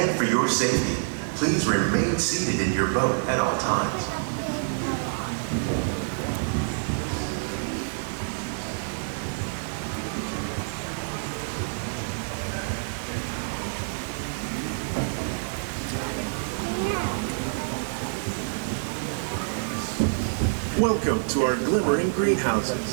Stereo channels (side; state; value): left; silent; digital silence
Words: for your safety, please remain seated in your boat at all times. Welcome to our glimmering